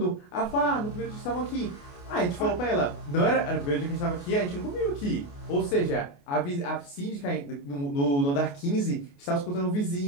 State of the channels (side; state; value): right; late; 28 ms